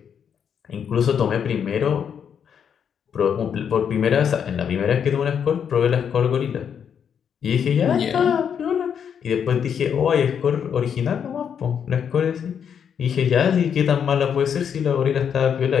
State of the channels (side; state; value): right; quieter; 7.8 dB